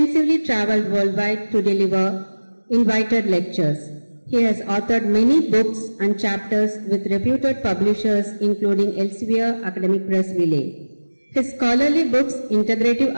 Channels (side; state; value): both; inverted; correlation -1.00